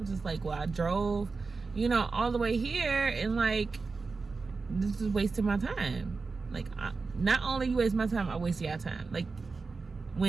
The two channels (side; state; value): left; quieter; 4.3 dB